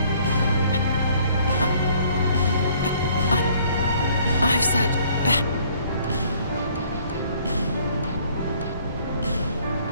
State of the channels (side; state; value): both; inverted; correlation -0.60